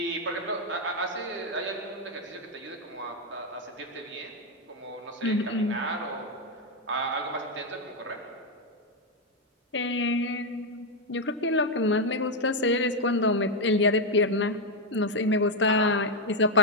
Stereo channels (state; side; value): normal; both; correlation 0.04